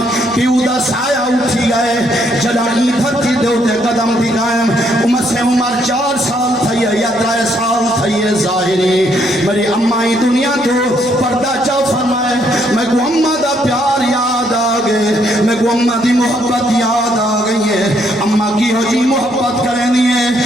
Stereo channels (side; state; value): right; noise; hum, 25 dB below the sound